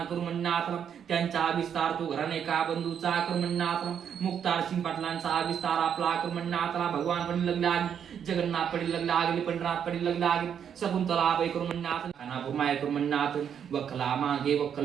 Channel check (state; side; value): quieter; left; 8.3 dB